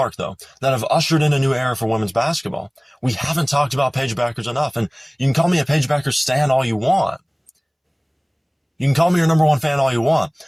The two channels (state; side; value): identical; both; correlation 1.00